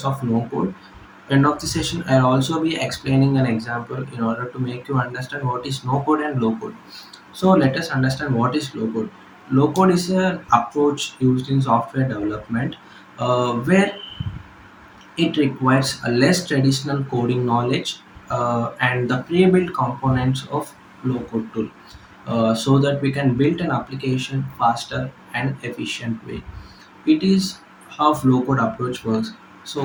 of no-code. End of the session, I'll also be explaining an example in order to make you understand what is no-code and low-code. So let us understand what is low code. Low code is an approach used in software development where it requires a less traditional coding knowledge and the pre-built components of low code tool so that we can build an application faster and efficient way. It is how low code approach works.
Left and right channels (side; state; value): both; identical; correlation 1.00